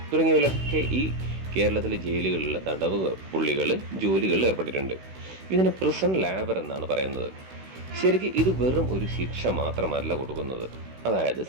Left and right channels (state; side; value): late; left; 16 ms